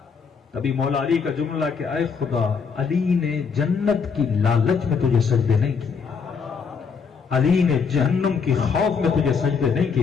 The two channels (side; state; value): right; quieter; 5.8 dB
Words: تبھی مولا علی کا جملہ کہ اے خدا، علی نے جنت کی لالچ میں تجھے سجدے نہیں کیے، علی نے جہنم کی خوف میں تجھے سجدے نہیں